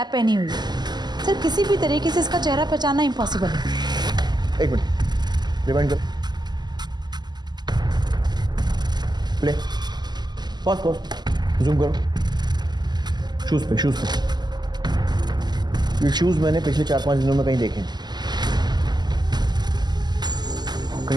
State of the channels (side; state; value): left; late; 0.21 ms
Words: पहनी हुई है। सर किसी भी तरीके से इसका चेहरा पहचानना इम्पॉसिबल है। 1 मिनट रिवाइंड करो, प्ले, पॉज, जूम करो। शूज पे ये शूज मैंने पिछले 4-5 दिनों में कहीं देखे हैं,